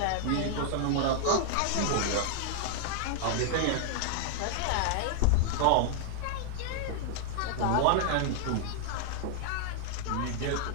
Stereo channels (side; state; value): both; different; correlation 0.00